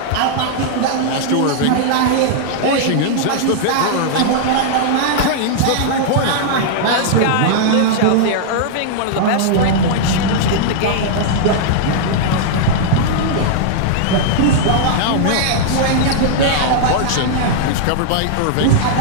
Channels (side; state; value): both; different; correlation -0.01